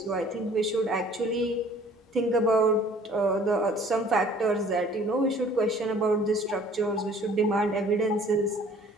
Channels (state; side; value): normal; both; correlation 0.53